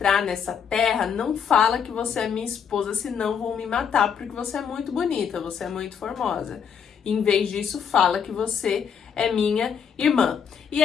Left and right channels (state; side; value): quieter; right; 7.3 dB